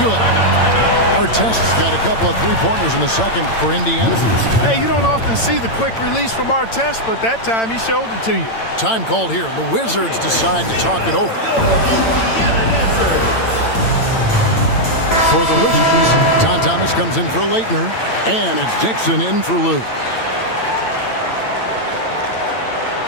Artest's got a couple of three-pointers in the second for Indiana. Hey, you don't often see the quick release from Artest, but that time he showed it to you. Time called here. The Wizards decide to talk it over. For the Wizards, Tom Thomas comes in for Leitner, and it's Dixon in for Lou.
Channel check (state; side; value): late; right; 8.9 ms